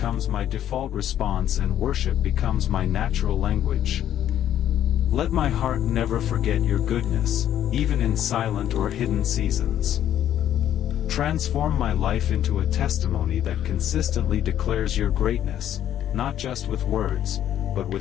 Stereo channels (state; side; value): quieter; right; 11.0 dB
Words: my default response and worship becomes my natural language. Let my heart never forget your goodness, even in silent or hidden seasons. Transform my life into a testimony that consistently declares your greatness, not just with words, but